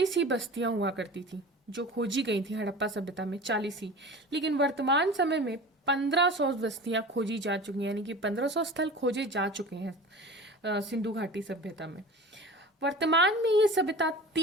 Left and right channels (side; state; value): both; normal; correlation 0.36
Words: ही बस्तियां हुआ करती थी जो खोजी गई थी हड़प्पा सभ्यता में, 40 ही, लेकिन वर्तमान समय में 1500 बस्तियां खोजी जा चुकी हैं, यानी कि 1500 स्थल खोजे जा चुके हैं सिंधु घाटी सभ्यता में। वर्तमान में ये सभ्यता